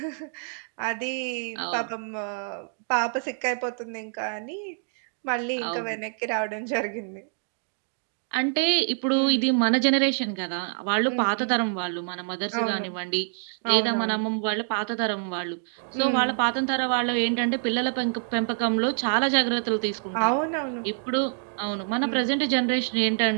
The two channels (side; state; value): left; silent; 61 dB below the other